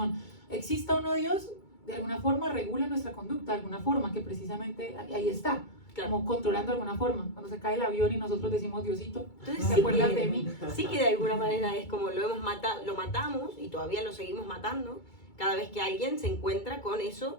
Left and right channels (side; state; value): right; late; 2.3 ms